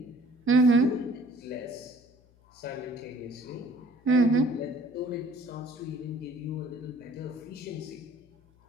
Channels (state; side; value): noise; left; hum, 30 dB below the sound